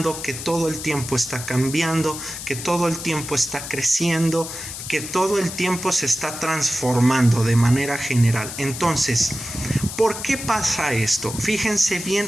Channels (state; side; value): noise; left; hiss, 9 dB below the sound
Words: que todo el tiempo está cambiando, que todo el tiempo está creciendo, que todo el tiempo se está transformando de manera general. Entonces, ¿por qué pasa esto? Fíjense